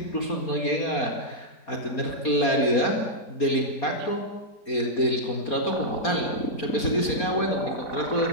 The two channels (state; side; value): late; right; 4.3 ms